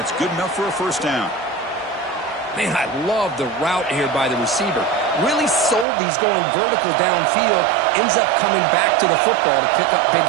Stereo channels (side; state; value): left; drops out; at 5.9 s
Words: good enough for a first down. Man, I love the route here by the receiver. Really sold these going vertical downfield. Ends up coming back to the football to pick up big